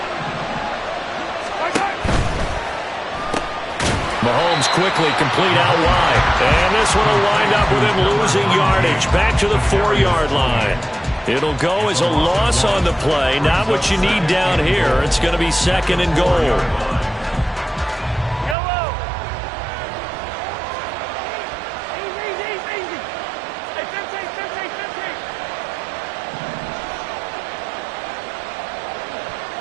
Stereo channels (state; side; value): drops out; left; at 18.6 s